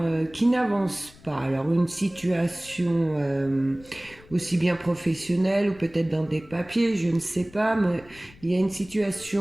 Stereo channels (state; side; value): noise; left; rumble, 24 dB below the sound